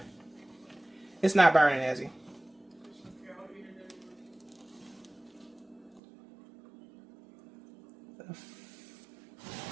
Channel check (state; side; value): drops out; left; at 6.0 s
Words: It's not burning, Ezzy.